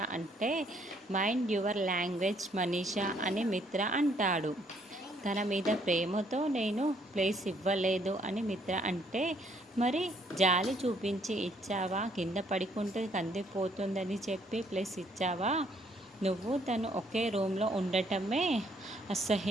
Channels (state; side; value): normal; both; correlation 0.67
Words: అంటే, మైండ్ యువర్ లాంగ్వేజ్ మనీష అని మిత్ర అంటాడు. తన మీద ప్రేమతో నేను ప్లేస్ ఇవ్వలేదు అని మిత్ర అంటే, మరి జాలి చూపించి ఇచ్చావా, కింద పడుకుంటే కందిపోతుందని చెప్పి ప్లేస్ ఇచ్చావా? నువ్వు తను ఒకే రూమ్లో ఉండటమే